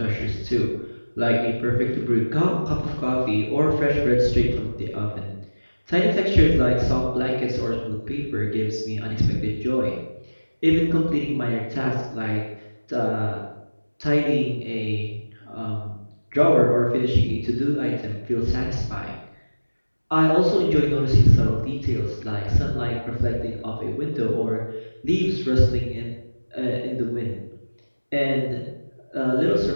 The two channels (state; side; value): inverted; both; correlation -1.00